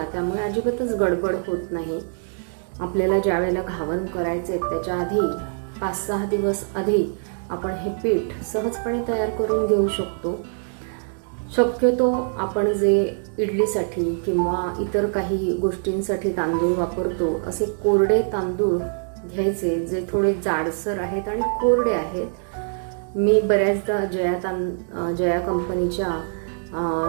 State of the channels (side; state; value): left; silent; 63 dB below the other